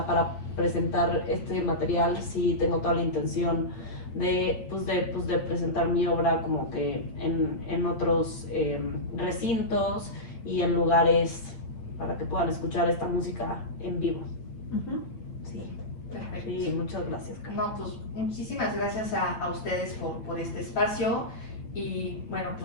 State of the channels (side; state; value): right; late; 8.8 ms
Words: para presentar este material sí tengo toda la intención de presentar mi obra como que en otros recintos y en lugares para que puedan escuchar esta música en vivo. Ujú. Sí, Perfecto. sí, muchas gracias, Carla. No, pues muchísimas gracias a ustedes por este espacio. Y bueno,